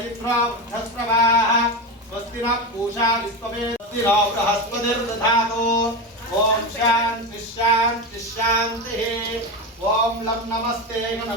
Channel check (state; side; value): normal; both; correlation 0.18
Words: इन्द्रो वृद्धस्रवाः स्वस्ति नः पूषा विश्ववेद स्वस्ति नो बृहस्पतिर्दधातु ओम शांति शांति शांतिः ओम लं नमस्ते